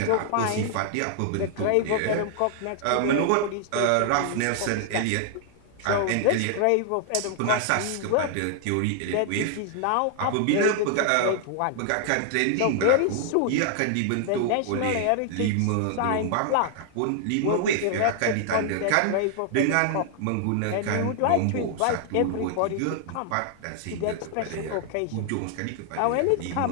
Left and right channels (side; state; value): both; different; correlation 0.00